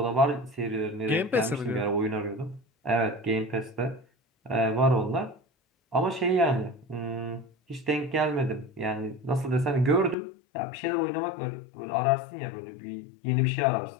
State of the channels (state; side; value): drops out; right; at 10.2 s